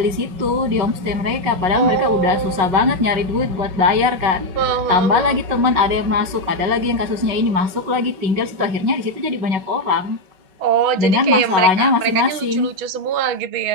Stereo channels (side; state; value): left; late; 5.4 ms